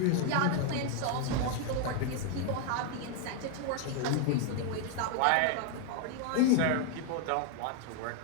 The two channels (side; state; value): both; different; correlation 0.00